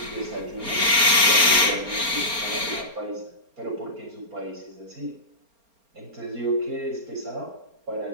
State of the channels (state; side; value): late; left; 4.3 ms